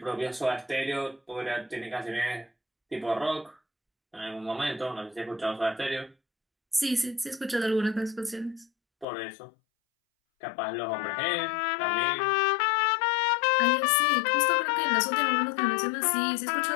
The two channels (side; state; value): right; drops out; at 9.1 s